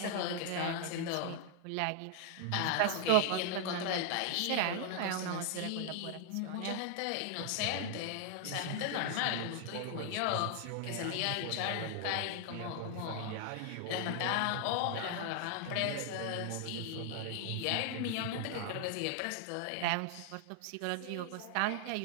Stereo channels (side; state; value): both; different; correlation 0.00